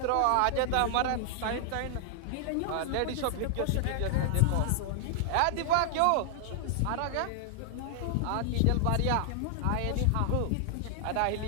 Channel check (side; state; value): both; different; correlation -0.01